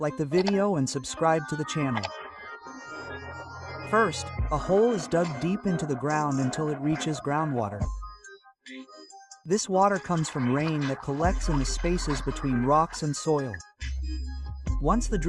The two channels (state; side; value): identical; both; correlation 1.00